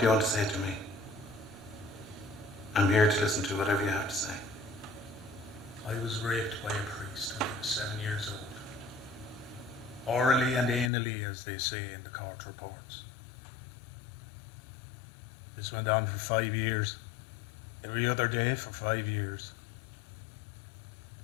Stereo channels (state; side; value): drops out; right; at 10.9 s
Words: you want to say to me? I'm here to listen to whatever you have to say. I was raped by a priest when I was 7 years old. Orally and anally, as they say in the court reports. This went on for 5 years. Every other day for 5 years.